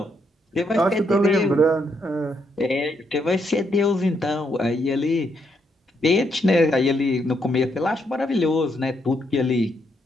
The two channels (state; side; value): normal; both; correlation 0.76